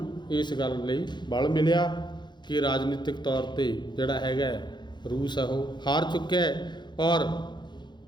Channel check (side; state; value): right; late; 0.21 ms